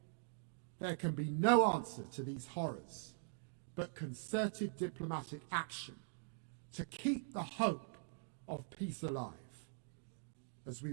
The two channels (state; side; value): silent; left; digital silence